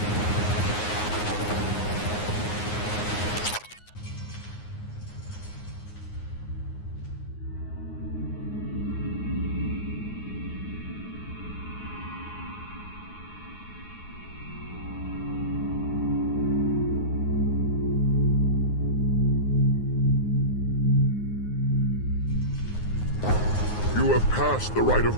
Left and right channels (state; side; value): late; right; 9.5 ms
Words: You have passed the rite of